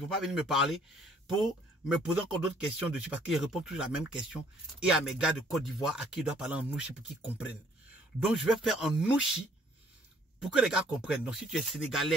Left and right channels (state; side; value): normal; both; correlation 0.61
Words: venir me parler pour me poser encore d'autres questions dessus parce qu'ils répondent toujours la même question. Et à mes gars de Côte d'Ivoire à qui ils doivent parler en Nushi pour qu'ils comprennent. Donc, je vais faire en Nushi pour que les gars comprennent. Donc, si tu es